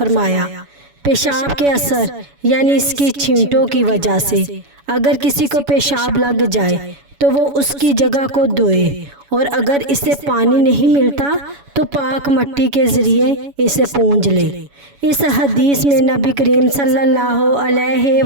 پیشاب کے اثر یعنی اس کی چھینٹوں کی وجہ سے اگر کسی کو پیشاب لگ جائے تو وہ اس کی جگہ کو دھوئے، اور اگر اسے پانی نہیں ملتا تو پاک مٹی کے ذریعے اسے پونجھ لے۔ اس حدیث میں نبی کریم صلی اللہ علیہ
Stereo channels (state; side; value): late; left; 7.1 ms